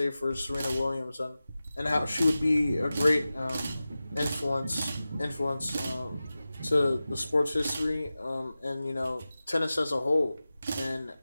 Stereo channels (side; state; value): both; inverted; correlation -0.95